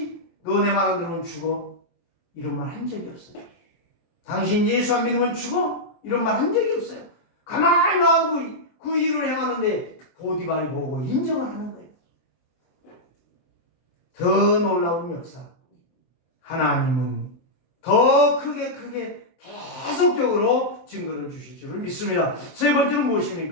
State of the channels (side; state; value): right; late; 24 ms